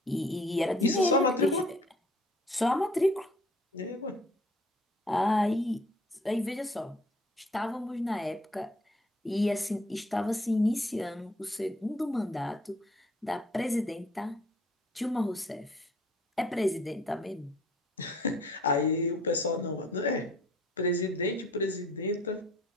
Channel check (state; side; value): normal; both; correlation 0.57